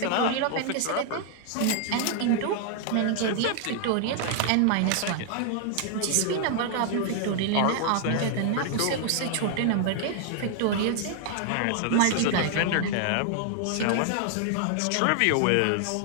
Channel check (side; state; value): both; different; correlation 0.00